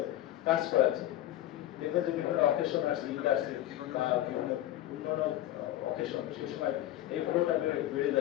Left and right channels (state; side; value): quieter; right; 13.7 dB